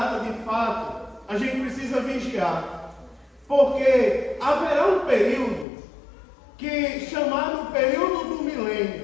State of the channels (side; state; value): right; drops out; at 5.7 s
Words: de fato. A gente precisa vigiar. Porque haverá um período chamado período do